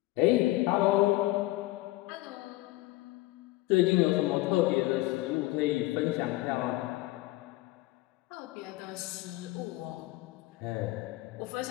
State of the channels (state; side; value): quieter; right; 19.1 dB